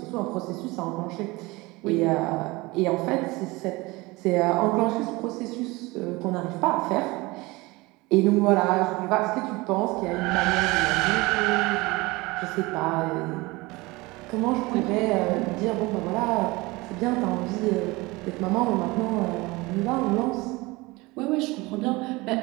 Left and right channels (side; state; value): left; quieter; 22.7 dB